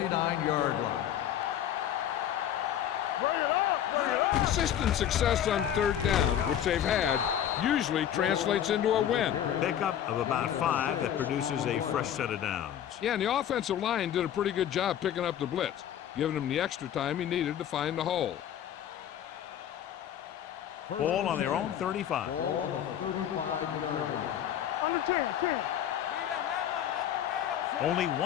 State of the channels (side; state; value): right; quieter; 10.3 dB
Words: line. Consistent success on 3rd down, which they've had, usually translates into a win. Pickup of about 5 that produces a fresh set of downs. Yeah, and the offensive line did a pretty good job picking up the blitz, giving him the extra time he needed to find the hole. Ball on their own 35. Ball on the 35-yard line. Under 10. Only